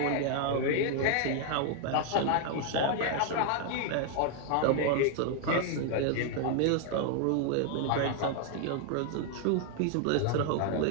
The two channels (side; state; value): both; different; correlation 0.00